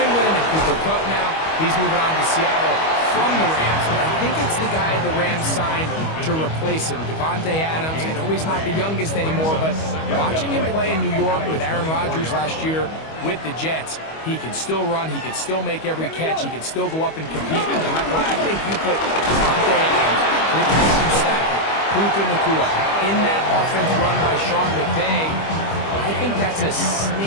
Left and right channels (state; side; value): late; right; 25 ms